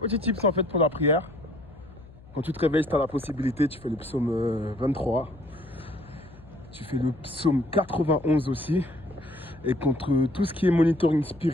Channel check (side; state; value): left; noise; hum, 22 dB below the sound